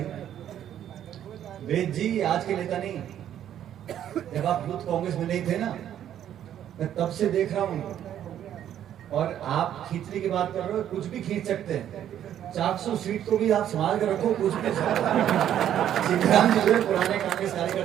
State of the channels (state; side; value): quieter; left; 10.6 dB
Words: वेद जी आज के नेता नहीं, जब आप यूथ कांग्रेस में नहीं थे ना, मैं तब से देख रहा हूँ। और आप खींचने की बात कर रहे हो, कुछ भी खींच सकते हैं, 400 सीट को भी आप संभाल कर रखो, कुछ भी। सीताराम जी पुराने कांग्रेस